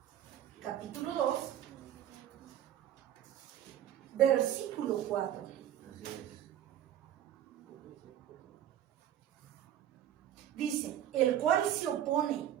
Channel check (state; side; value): quieter; left; 11.2 dB